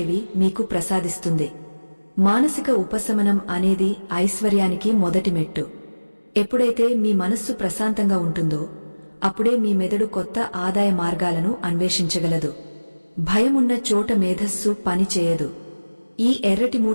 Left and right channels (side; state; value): both; inverted; correlation -1.00